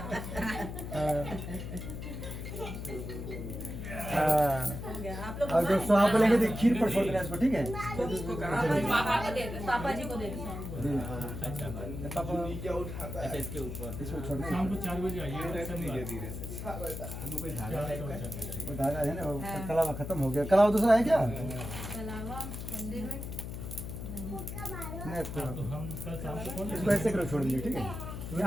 आप लोग और जब स्वाहा बोलेंगे तो खीर पर छोड़ देना इसको, ठीक है? पापा को दे दो, पापा जी को दे दो। अच्छा इसके ऊपर इसको छोड़ना शाम को 4 बजे आइए। वो धागा है ना, वो कलावा खत्म हो गया। कलावा दूसरा है क्या? कलावा मंदिर में नहीं तो हम कल शाम को कौन इसको ऐसे करो, छोड़ दीजिए, ठीक है? ये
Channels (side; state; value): left; noise; hum, 7 dB below the sound